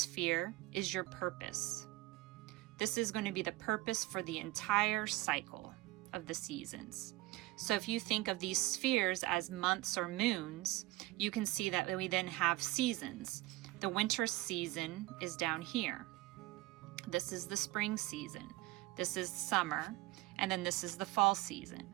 is your purpose. This is going to be the purpose for the entire cycle of the seasons. So if you think of these spheres as months or moons, you can see that we then have seasons. The winter season is down here. This is the spring season. This is summer, and then this is the fall season.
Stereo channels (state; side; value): quieter; left; 19.7 dB